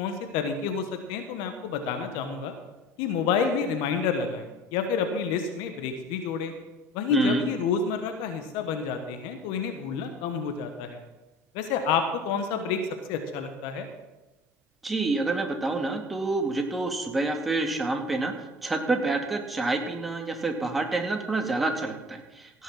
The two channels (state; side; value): normal; both; correlation 0.43